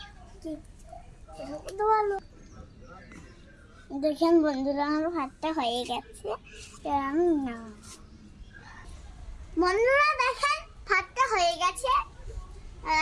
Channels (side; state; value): both; identical; correlation 1.00